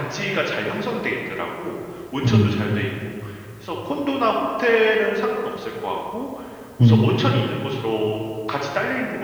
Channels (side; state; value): both; identical; correlation 1.00